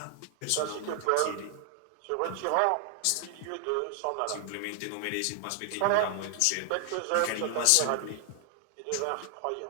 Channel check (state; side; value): different; both; correlation 0.00